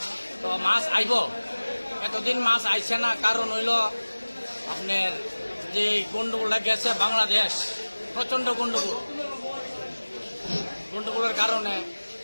তো মাছ আইব, এতদিন মাছ আইছে না, কারণ হইল আপনার যে গন্ডগোলটা গেছে বাংলাদেশ, প্রচণ্ড গন্ডগোলের কারণে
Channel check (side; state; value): both; inverted; correlation -1.00